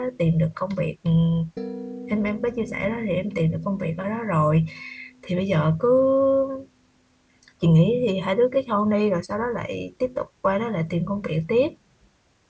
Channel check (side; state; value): both; identical; correlation 1.00